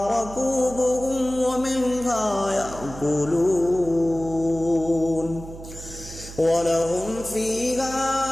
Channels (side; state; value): right; noise; hum, 14 dB below the sound